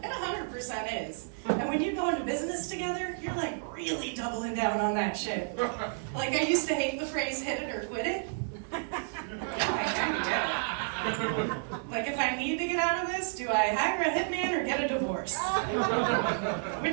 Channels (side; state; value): left; silent; digital silence